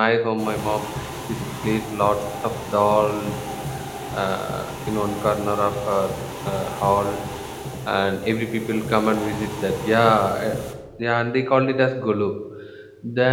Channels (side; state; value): both; identical; correlation 1.00